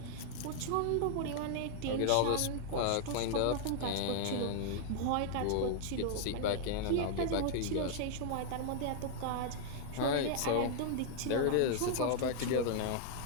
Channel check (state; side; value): different; both; correlation -0.01